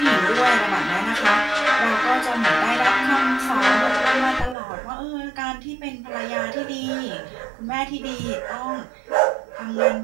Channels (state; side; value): drops out; left; at 4.5 s